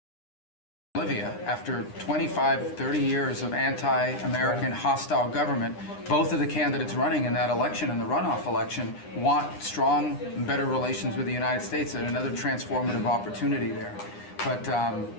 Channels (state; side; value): late; right; 9.8 ms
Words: Bolivia, after 25, 30 years of anti-American hostile government, both of the candidates running in that election and the runoff election want strong and better relations with the United States and another transformative opportunity there. But